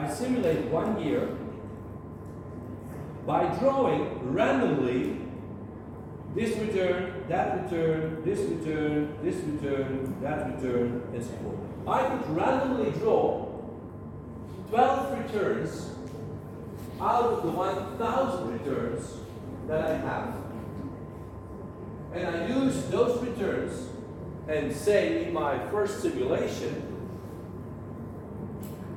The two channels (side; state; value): both; identical; correlation 1.00